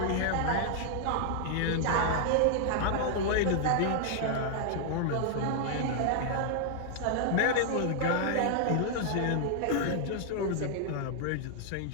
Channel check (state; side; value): different; both; correlation -0.01